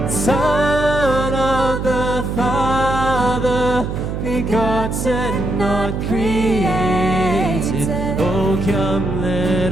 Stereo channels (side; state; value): right; noise; hum, 4 dB below the sound